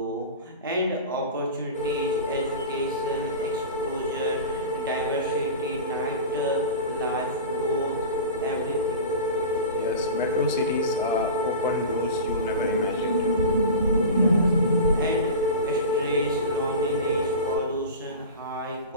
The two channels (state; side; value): inverted; both; correlation -0.31